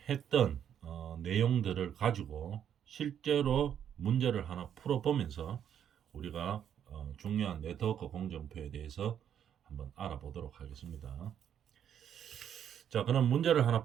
했던 내용들을 가지고 실제로 문제를 하나 풀어보면서 우리가 중요한 네트워크 공정표에 대해서 한번 알아보도록 하겠습니다. 자, 그럼 문제를 하나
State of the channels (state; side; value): quieter; left; 9.2 dB